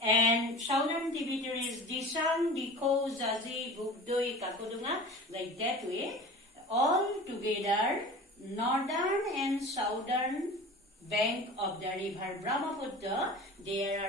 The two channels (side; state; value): both; normal; correlation 0.37